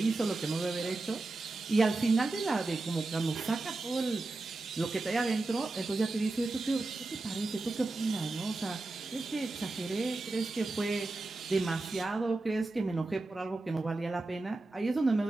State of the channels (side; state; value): left; quieter; 3.2 dB